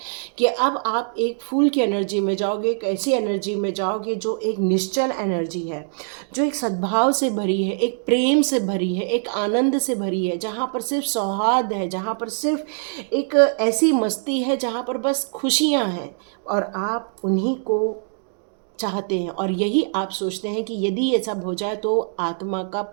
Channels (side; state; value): left; silent; digital silence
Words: कि अब आप एक फूल की एनर्जी में जाओगे, एक ऐसी एनर्जी में जाओगे जो एक निश्चल एनर्जी है, जो एक सद्भाव से भरी है, एक प्रेम से भरी है, एक आनंद से भरी है, जहाँ पर सिर्फ सौहार्द है, जहाँ पर सिर्फ एक ऐसी मस्ती है, जहाँ पर बस खुशियाँ हैं और आप उन्हीं को चाहते हैं। और यही आप सोचते हैं कि यदि ये सब हो जाए तो आत्मा का